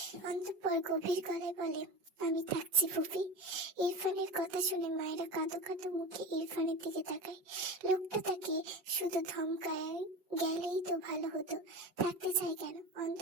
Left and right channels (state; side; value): late; left; 5.4 ms